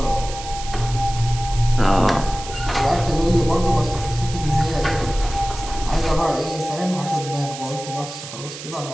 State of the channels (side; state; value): right; noise; hiss, 12 dB below the sound